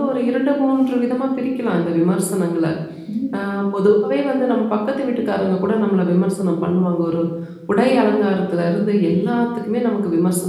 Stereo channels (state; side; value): identical; both; correlation 1.00